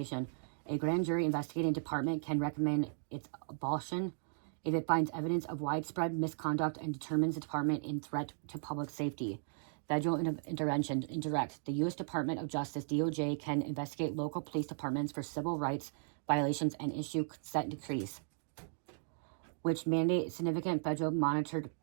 A grand jury investigating department can recommend its abolition if it finds evidence of widespread misconduct and determines the department in threat to public safety. Federal intervention, indirect. The U.S. Department of Justice, DOJ, can investigate local police departments for civil rights violations and issue consent decrees, which mandate significant federal monitored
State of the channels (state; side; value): silent; left; digital silence